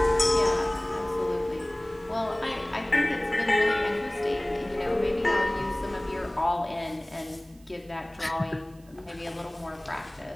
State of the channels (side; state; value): right; noise; hiss, 29 dB below the sound